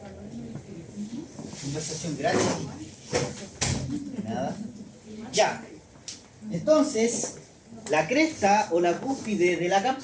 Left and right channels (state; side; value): identical; both; correlation 1.00